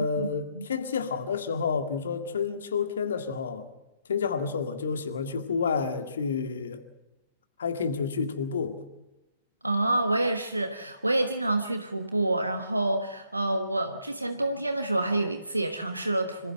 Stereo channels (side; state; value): both; inverted; correlation -0.73